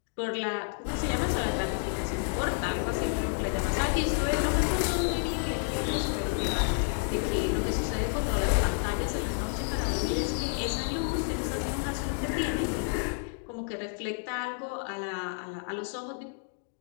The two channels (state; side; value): silent; right; 58 dB below the other